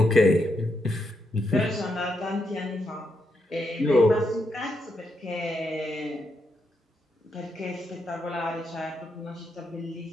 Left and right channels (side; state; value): both; normal; correlation 0.81